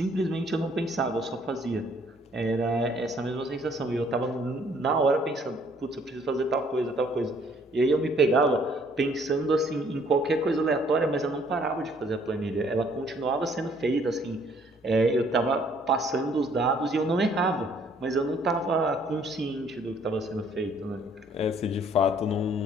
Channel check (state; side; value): normal; both; correlation 0.62